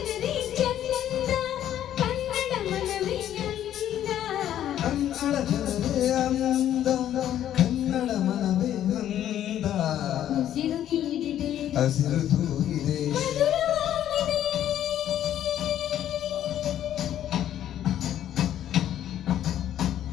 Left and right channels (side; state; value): right; quieter; 11.3 dB